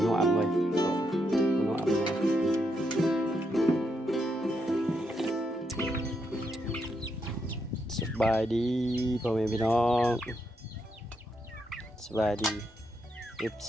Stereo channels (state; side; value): normal; both; correlation 0.80